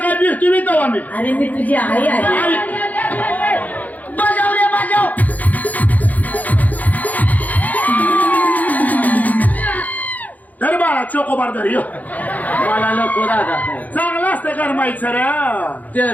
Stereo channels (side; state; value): right; late; 0.079 ms